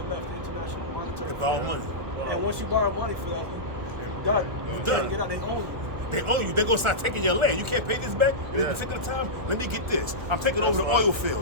the International Monetary They borrow Fund. money. And once you borrow money for that, you're done. You're done. Get out. They own you. They own you. They're gonna start taking your land. You can't pay this back in this particular time. Let me get this. I'm taking over the oil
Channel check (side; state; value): left; late; 1.4 ms